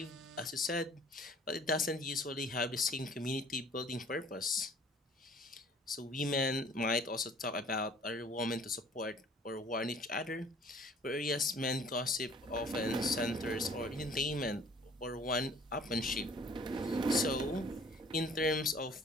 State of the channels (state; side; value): normal; both; correlation 0.53